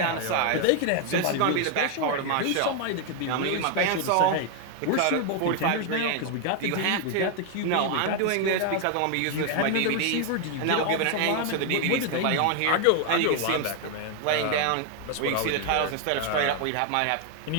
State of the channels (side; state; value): both; different; correlation 0.00